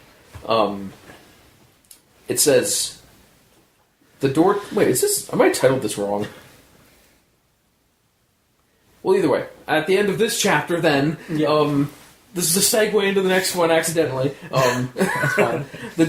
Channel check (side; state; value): both; identical; correlation 1.00